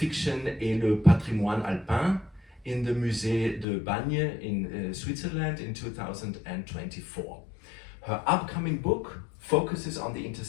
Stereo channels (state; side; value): drops out; right; at 3.7 s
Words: et le Patrimoine Alpin in the Musée de Bagne in Switzerland in 2024. Her upcoming book focuses on the